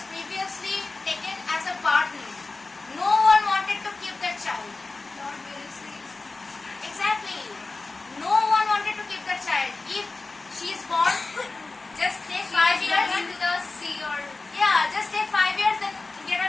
previously taken as a burden. No one wanted to keep that child. Lord Wellesley. Exactly. No one wanted to keep that child. If she is born, just take 5 years. Into the sea or. Yeah, just take 5 years, then get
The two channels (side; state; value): right; quieter; 3.6 dB